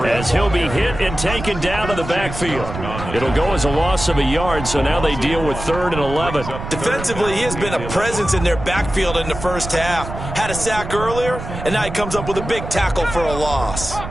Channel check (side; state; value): right; noise; rumble, 9 dB below the sound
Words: as he'll be hit and taken down to the backfield. It'll go as a loss of a yard, so now they deal with 3rd and 11. Defensively, he has been a presence in their backfield in the first half. Had a sack earlier, and now he comes up with a big tackle for a loss.